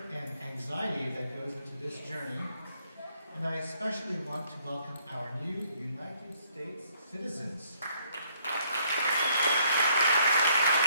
and anxiety that goes into this journey, and I especially want to welcome our new United States citizens.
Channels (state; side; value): inverted; both; correlation -0.67